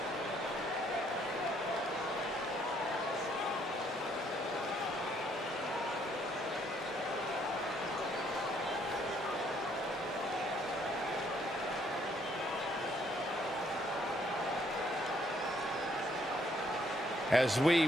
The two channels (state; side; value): normal; both; correlation 0.67